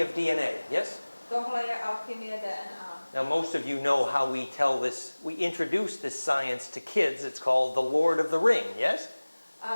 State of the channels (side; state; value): both; inverted; correlation -1.00